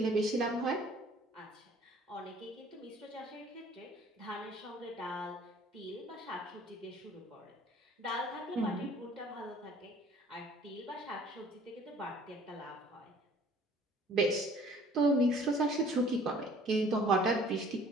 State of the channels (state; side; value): normal; both; correlation 0.54